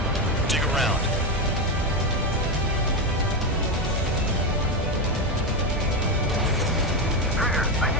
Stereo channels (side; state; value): both; normal; correlation 0.11